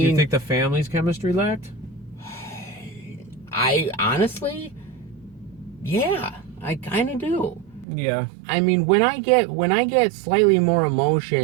you think the family's chemistry lacked? I honestly, yeah, I kind of do. Yeah. I mean, when I get slightly more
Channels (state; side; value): drops out; left; at 7.9 s